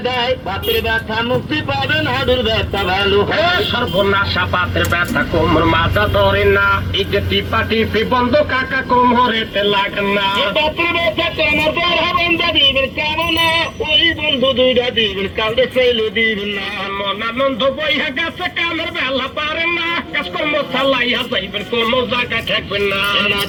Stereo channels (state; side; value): identical; both; correlation 1.00